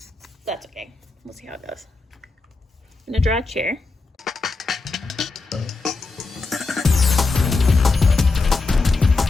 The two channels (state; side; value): quieter; right; 3.8 dB